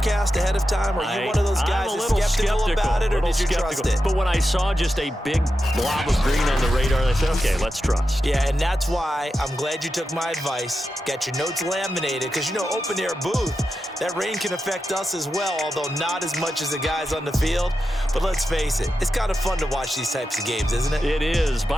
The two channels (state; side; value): normal; both; correlation 0.90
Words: ahead of time? Are you one of those guys that's skeptical about it, or did you trust it? But when I saw just a big blob of green on the radar, I said, okay, let's trust. Yeah, and that's why I'm glad you took my advice. Got your notes laminated, because, you know, open-air booth, that rain can affect us as well, although not as much as the guys on the field. But let's face it, it's kind of fun to watch these types of games, isn't it? It is.